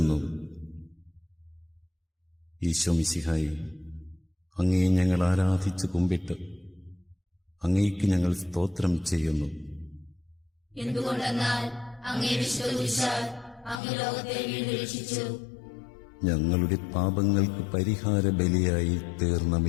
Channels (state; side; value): drops out; right; at 13.8 s